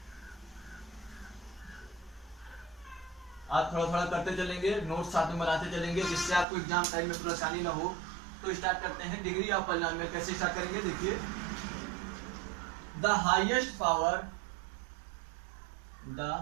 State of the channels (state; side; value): drops out; left; at 6.5 s